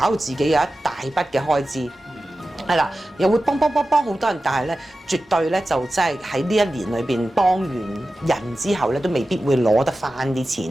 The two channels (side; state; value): both; normal; correlation 0.94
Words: 到自己有一大筆嘅開支。係啦，又會幫好多人，但係咧絕對咧就真係喺呢一年裏邊幫完人之後咧，都未必會攞得翻啲